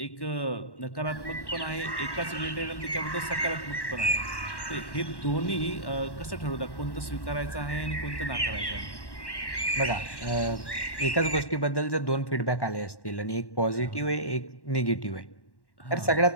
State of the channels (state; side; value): late; right; 1.1 ms